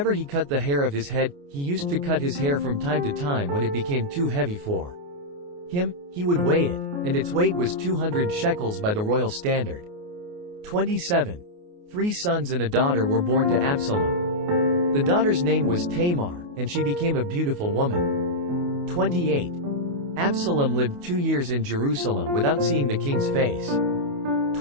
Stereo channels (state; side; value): late; left; 28 ms